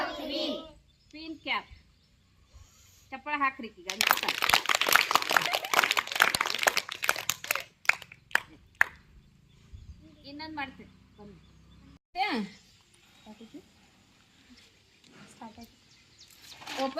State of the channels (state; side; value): identical; both; correlation 1.00